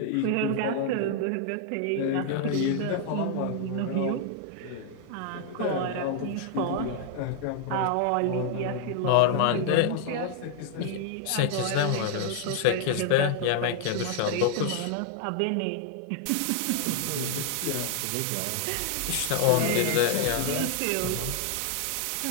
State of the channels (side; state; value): both; different; correlation 0.00